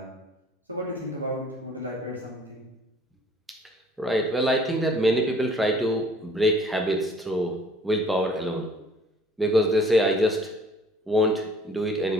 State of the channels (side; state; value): both; normal; correlation 0.55